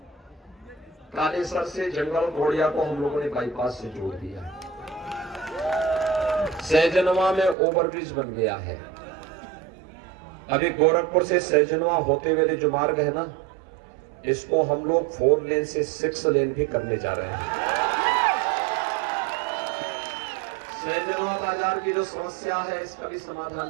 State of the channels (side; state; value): left; drops out; at 7.6 s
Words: कालेसर से जंगल घोड़िया को हम लोगों ने बाईपास से जोड़ दिया। सहजनवा में ओवरब्रिज बन गया है। अभी गोरखपुर से सहजनवा होते हुए जो मार्ग है ना, इसको हम लोग 4 लेन से 6 लेन भी करने जा रहे हैं। सहजनवा बाजार की जो समस्या है इसका भी